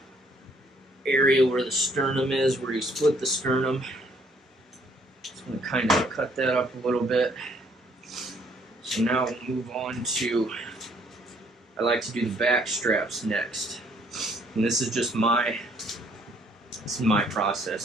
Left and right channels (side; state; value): both; normal; correlation 0.64